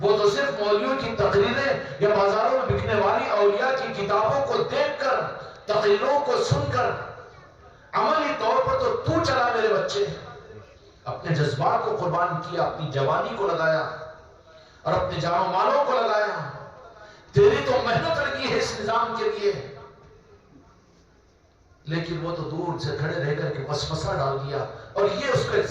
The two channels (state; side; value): identical; both; correlation 1.00